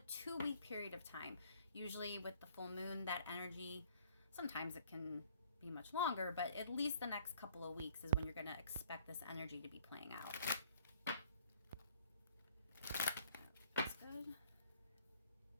2-week period of time. Usually with the full moon, that energy, sometimes it can be much longer, but at least the next couple of weeks is when you're going to expect this energy to be playing out. That's good.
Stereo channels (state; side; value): inverted; both; correlation -0.58